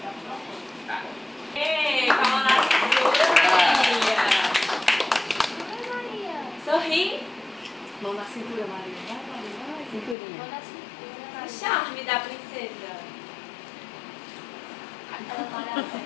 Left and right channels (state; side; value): drops out; right; at 10.2 s